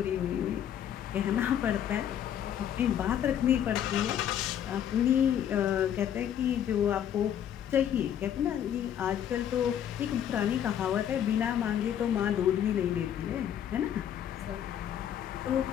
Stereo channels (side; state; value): right; quieter; 9.8 dB